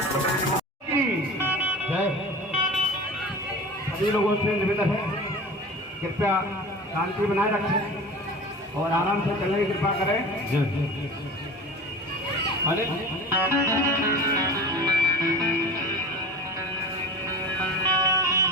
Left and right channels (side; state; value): both; normal; correlation 0.35